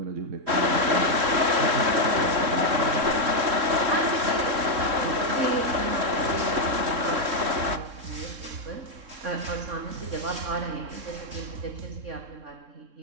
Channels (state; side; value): late; left; 3.7 ms